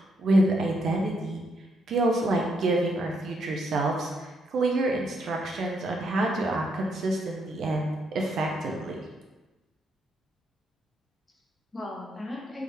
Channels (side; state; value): both; normal; correlation 0.76